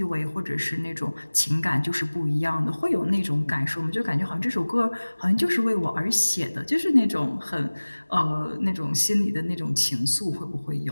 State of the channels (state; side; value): inverted; both; correlation -1.00